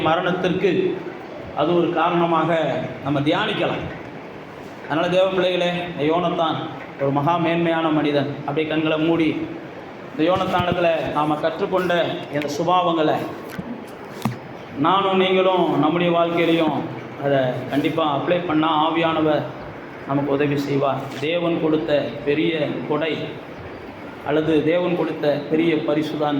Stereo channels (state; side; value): identical; both; correlation 1.00